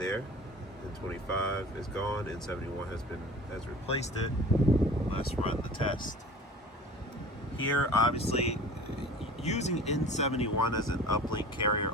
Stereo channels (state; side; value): normal; both; correlation 0.41